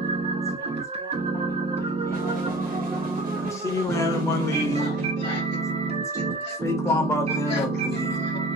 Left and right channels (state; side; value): normal; both; correlation 0.44